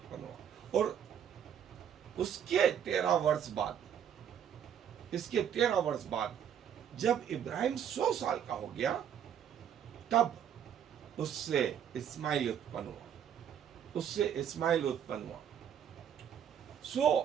हुआ। और उसके 13 वर्ष बाद, इसके 13 वर्ष बाद जब इब्राहिम 100 साल का हो गया, तब उससे इस्माइल उत्पन्न हुआ, उससे इस्माइल उत्पन्न हुआ।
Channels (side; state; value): left; quieter; 8.9 dB